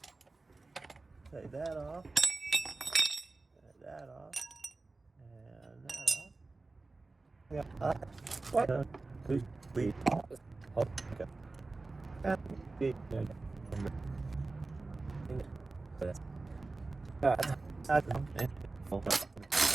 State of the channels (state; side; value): quieter; left; 3.5 dB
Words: Take that off. Take that off. And that off. Yeah. What? Please. Okay.